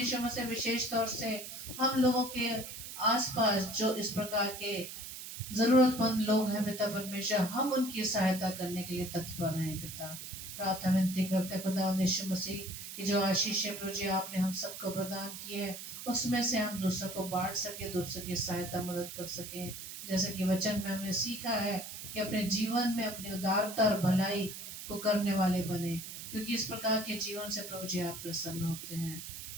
में से विशेष तौर से हम लोगों के आसपास जो इस प्रकार के जरूरतमंद लोग हैं पिता परमेश्वर, हम उनकी सहायता करने के लिए तत्पर हैं पिता। प्रार्थना विनती करते हैं खुदा यीशु मसीह की जो आशीष है प्रभु जी आपने हम सबको प्रदान की है, उसमें से हम दूसरों को बांट सके, दूसरों की सहायता मदद कर सके। जैसे कि वचन में हमने सीखा है कि अपने जीवन में अपनी उदारता और भलाई को करने वाले बने, क्योंकि इस प्रकार के जीवन से प्रभु जी आप प्रसन्न होते हैं।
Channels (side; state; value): right; noise; hiss, 10 dB below the sound